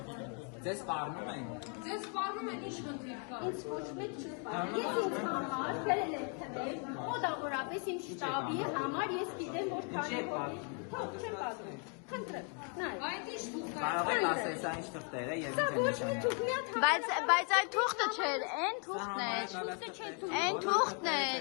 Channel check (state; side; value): quieter; right; 39.8 dB